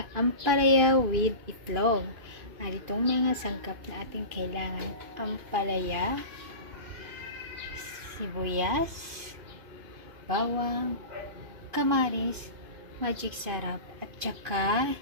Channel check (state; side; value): late; left; 2.5 ms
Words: ampalaya with itlog. At itong mga sangkap na ating kailangan: ampalaya, sibuyas, bawang, kamaris, magic sarap, at saka